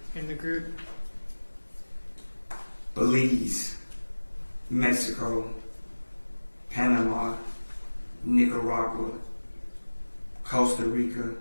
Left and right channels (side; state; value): both; inverted; correlation -1.00